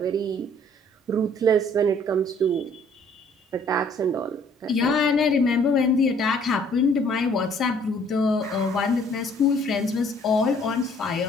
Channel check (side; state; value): both; normal; correlation 0.59